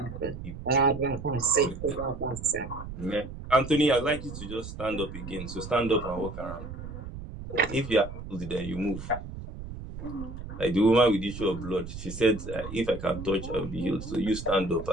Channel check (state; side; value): noise; right; rumble, 10 dB below the sound